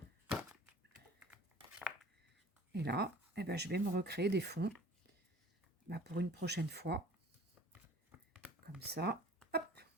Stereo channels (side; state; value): both; normal; correlation 0.47